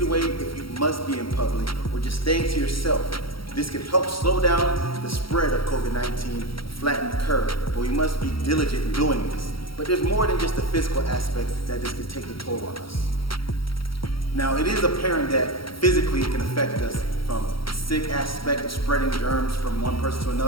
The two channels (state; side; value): late; right; 0.74 ms